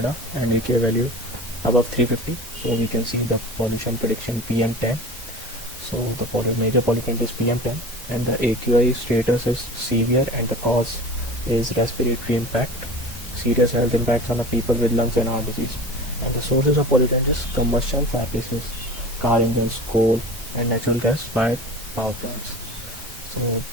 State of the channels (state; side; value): normal; both; correlation 0.36